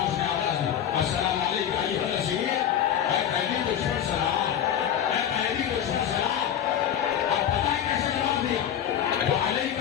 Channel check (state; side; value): quieter; right; 9.6 dB